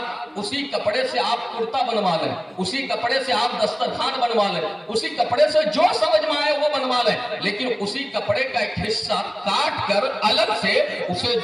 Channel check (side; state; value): both; identical; correlation 1.00